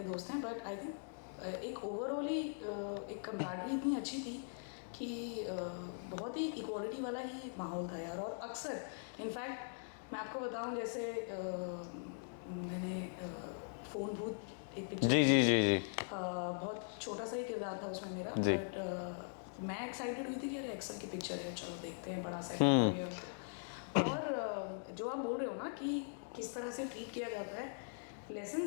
दोस्त हैं, बट आई थिंक एक ओवरऑली एक कम्राडरी इतनी अच्छी थी कि बहुत ही इक्वालिटी वाला ही माहौल था यार। और अक्सर इनफैक्ट मैं आपको बताऊं, जैसे मैंने फ़ोन भूत एक पिक्चर की थी, बहुत छोटा सा ही किरदार था उसमें मेरा, बट मैं एक्साइटेड हुई थी कि अरे एक्सेल की पिक्चर है, चलो देखते हैं, बड़ा सेटअप और ये और जो आप बोल रहे हो ना कि किस तरह से ट्रीट किया जाता है,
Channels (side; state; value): right; silent; digital silence